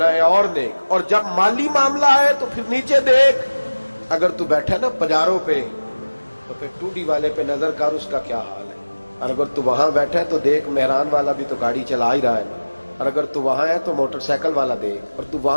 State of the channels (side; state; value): both; inverted; correlation -1.00